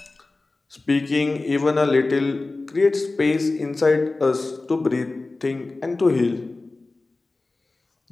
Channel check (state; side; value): quieter; right; 3.3 dB